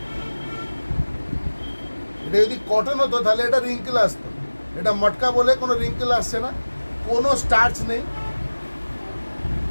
এটা যদি কটন হতো তাহলে এটা রিঙ্কেল আসতো, এটা মটকা বলে কোনো রিঙ্কেল আসছে না, কোনো স্টার্চ নেই।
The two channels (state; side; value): inverted; both; correlation -1.00